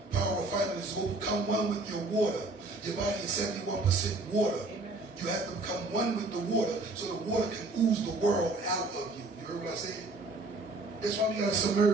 Power refinement is become one with your water. Your body is 71% water. Amen. You have to become one with the water so the water can ooze the world out of you. You heard what I said? That's why we got to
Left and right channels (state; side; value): quieter; left; 3.1 dB